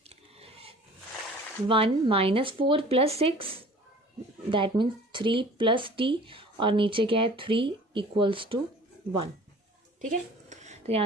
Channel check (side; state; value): both; normal; correlation 0.47